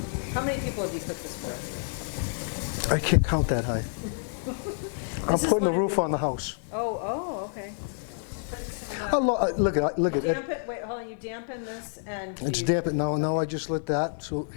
how many people have you cooked this for? I can't count that high. I'm This is putting the one- roof on the house. Oh, okay. Putting some, Look at you it. damp it, wait, hold on, you dampen this and It's you- damp. No, I just lit that. So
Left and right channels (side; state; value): right; silent; 57 dB below the other